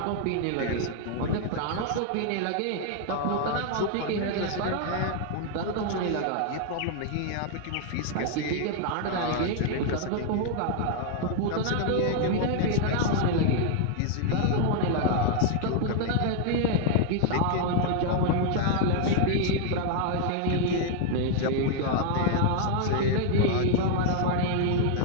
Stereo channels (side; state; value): both; different; correlation 0.00